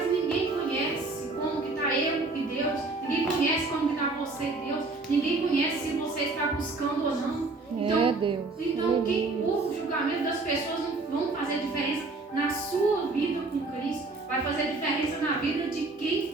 ninguém conhece como que está eu e Deus, ninguém conhece buscando ou não. Então, o julgamento das pessoas não vão fazer diferença na sua vida com Cristo. Vai fazer diferença na vida de quem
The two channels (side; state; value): left; quieter; 3.4 dB